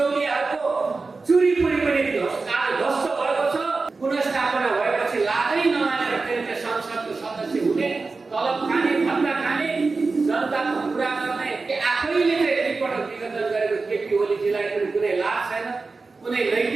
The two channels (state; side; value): quieter; left; 4.0 dB